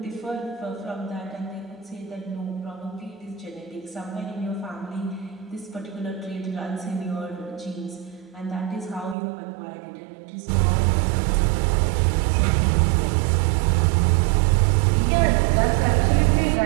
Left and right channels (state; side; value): drops out; left; at 9.2 s